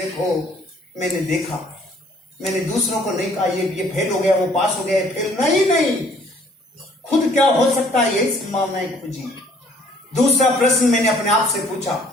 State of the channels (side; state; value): both; normal; correlation 0.60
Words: देखो। मैंने देखा, मैंने दूसरों को नहीं कहा ये फेल हो गया, वो पास हो गया, फेल नहीं। खुद क्या हो सकता है यही संभावनाएं खोजी। दूसरा प्रश्न मैंने अपने आप से पूछा,